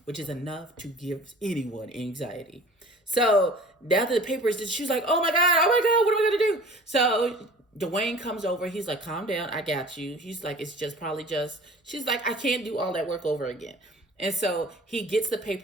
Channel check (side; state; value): both; normal; correlation 0.45